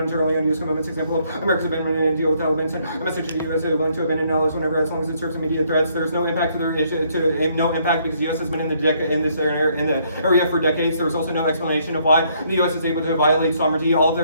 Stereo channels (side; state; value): both; inverted; correlation -0.69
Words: entirely on U.S. commitments. Example of America's abandonment in a deal with Taliban sent a message to the U.S. willing to abandon allies whenever, as long as it serves immediate threats. There is no impact to their issue, no impact because the U.S. has been in this area for decades. There is also no explanation of why the U.S. is able to violate sovereignty. All of